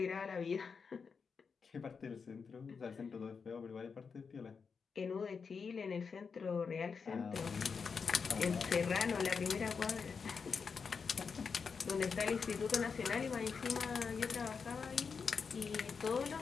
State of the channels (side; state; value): right; quieter; 5.6 dB